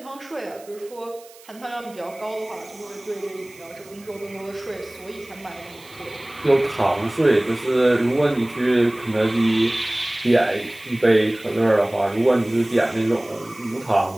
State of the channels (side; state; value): right; noise; hiss, 23 dB below the sound